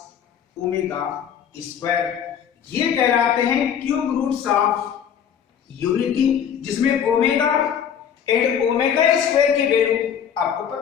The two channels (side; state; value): right; quieter; 8.4 dB